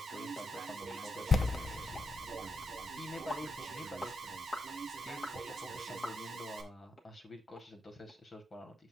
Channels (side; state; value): both; normal; correlation 0.82